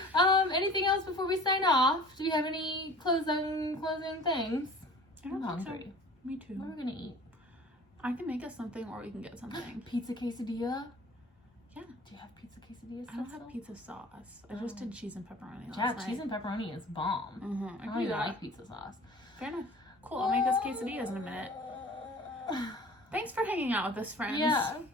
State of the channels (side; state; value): both; normal; correlation 0.45